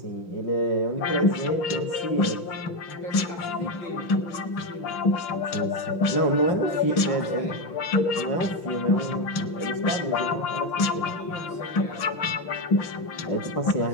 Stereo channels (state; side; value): late; right; 5.8 ms